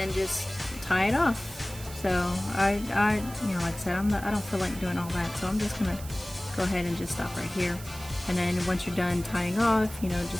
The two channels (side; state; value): right; noise; hiss, 15 dB below the sound